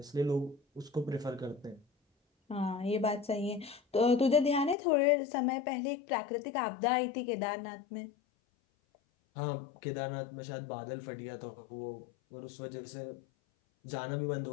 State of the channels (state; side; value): drops out; right; at 4.8 s